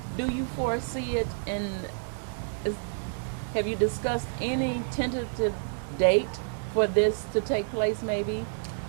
Do you foresee it have you discussed any tentative date for this to take place maybe?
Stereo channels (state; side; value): silent; left; digital silence